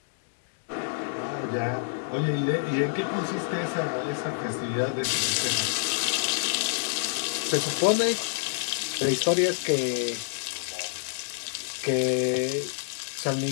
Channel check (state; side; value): silent; right; digital silence